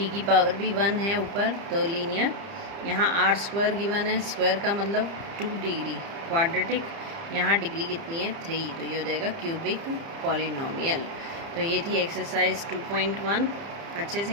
की पावर भी 1 है ऊपर तो लीनियर। यहाँ r² गिवन है, स्क्वायर का मतलब 2 डिग्री क्वाड्रेटिक, यहाँ डिग्री कितनी है 3, तो ये हो जाएगा क्यूबिक पॉलिनोमियल। तो ये थी एक्सरसाइज 2.1। अच्छे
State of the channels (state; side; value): late; left; 30 ms